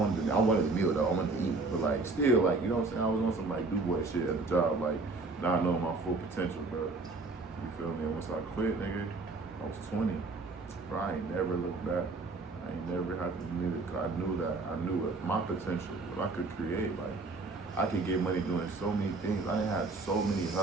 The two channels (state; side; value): quieter; left; 3.6 dB